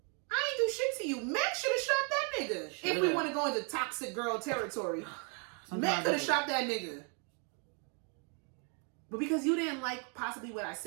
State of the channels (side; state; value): left; quieter; 38.4 dB